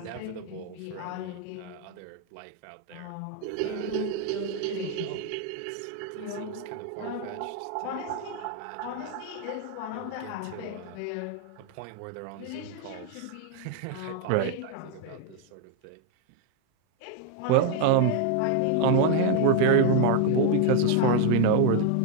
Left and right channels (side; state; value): both; different; correlation 0.00